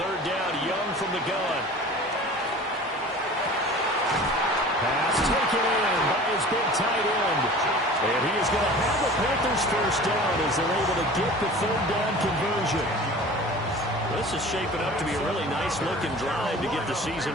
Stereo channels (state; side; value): normal; both; correlation 0.41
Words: down, Young from the gun. Pass taken in by his big tight end. And he is going to have the Panthers first down as they're able to get the 3rd down conversion. This is shaping up to be a really nice-looking drive to get the